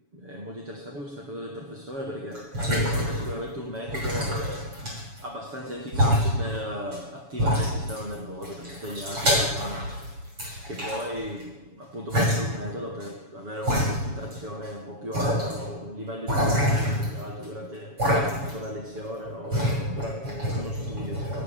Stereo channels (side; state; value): left; late; 7.1 ms